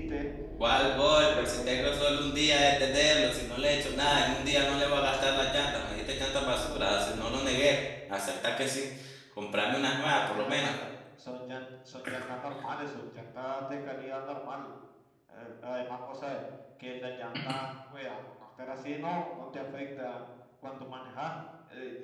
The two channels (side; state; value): both; identical; correlation 1.00